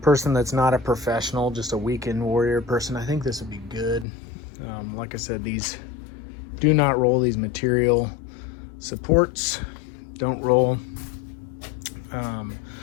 person that's not a professional, just a weekend warrior person, I think this would be good. Like I said, these do not roll. These material supports don't roll.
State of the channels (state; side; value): drops out; right; at 4.0 s